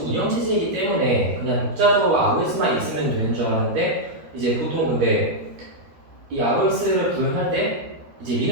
운영체제이기 때문에 그냥 독자적으로 ROS만 있으면 되는 줄 알았는데 이제 보통 근데 이 ROS를 구현할 때 이제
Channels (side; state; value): left; late; 13 ms